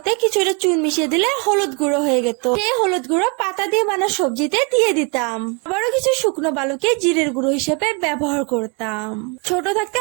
কিছুটা চুন মিশিয়ে দিলে হলুদ গুঁড়ো হয়ে যেত। সেই হলুদ গুঁড়ো পাতা দিয়ে বানা সবজিতে দিয়ে দিতাম। আবারও কিছু শুকনো বালুকে জিরের গুঁড়ো হিসেবে ব্যবহার করতাম। ছোট থাকতে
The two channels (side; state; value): left; quieter; 31.7 dB